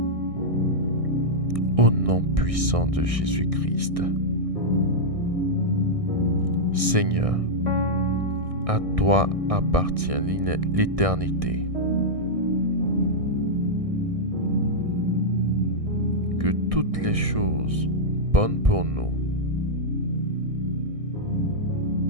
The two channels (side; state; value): left; late; 1.6 ms